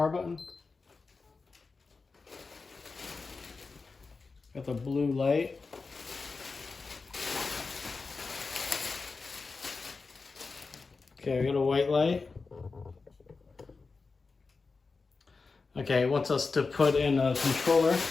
button. Got the blue light. Okay, we got a white light. Okay, it wants us to put in a controller.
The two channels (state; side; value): quieter; right; 4.3 dB